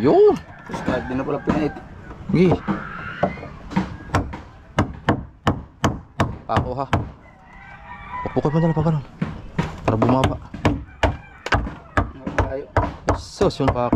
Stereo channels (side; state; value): both; identical; correlation 1.00